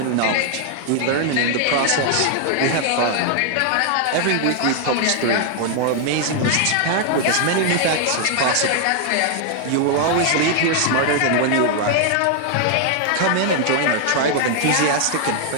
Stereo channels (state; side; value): different; both; correlation 0.00